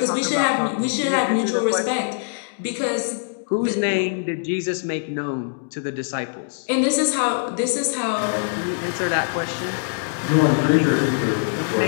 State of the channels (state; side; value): silent; right; digital silence